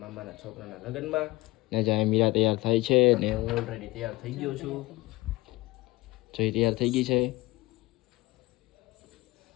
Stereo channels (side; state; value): right; quieter; 20.6 dB